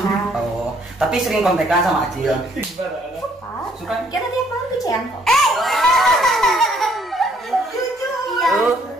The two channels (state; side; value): normal; both; correlation 0.65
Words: Oh, tapi sering kontekan sama Acil. Suka? Kita tiap malam tuh Cian kok. Jujur. Iya.